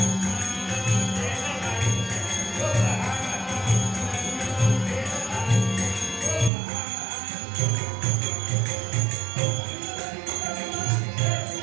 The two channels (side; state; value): left; drops out; at 6.5 s